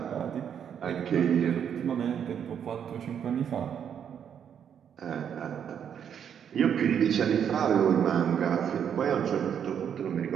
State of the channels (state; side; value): quieter; left; 8.4 dB